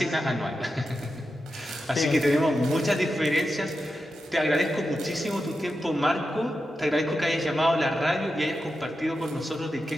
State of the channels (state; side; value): normal; both; correlation 0.89